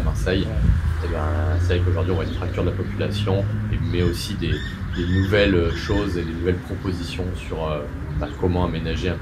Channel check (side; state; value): both; identical; correlation 1.00